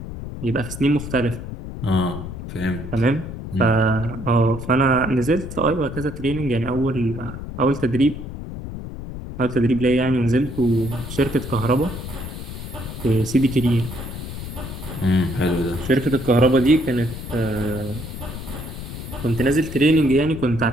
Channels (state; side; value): noise; left; rumble, 9 dB below the sound